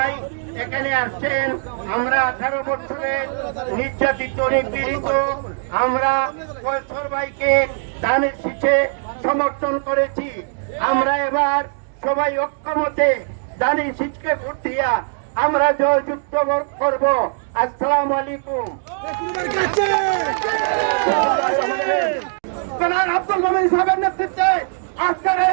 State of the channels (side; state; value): left; silent; digital silence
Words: এখানে আসছেন। আমরা 18 বছরের নির্যাতিত নিপীড়িত আমরা কৈশোর ভাইকে দানের শীষে সমর্থন করেছি। আমরা এবার সবাই ঐক্যমতে দানের শীষকে ভোট দিয়া আমরা জয়যুক্ত করব। আসসালামু আলাইকুম। জনাব আব্দুল মোমিন সাহেবের নেতৃত্বে আজকের